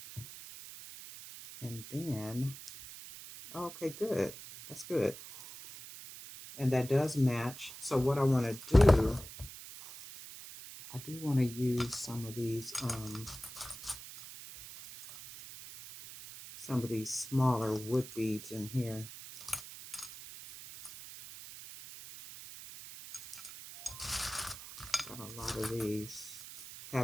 And then, okay, good. That's good. And that does match. So what I want to do, I do want to use some of these smaller wood beads in here. Got a lot of these.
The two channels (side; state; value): right; noise; hiss, 13 dB below the sound